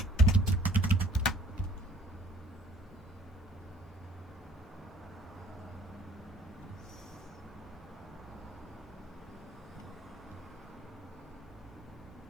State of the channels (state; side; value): normal; both; correlation 0.56